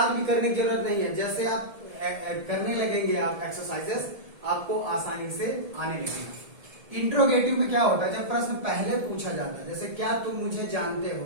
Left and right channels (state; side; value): late; left; 1.7 ms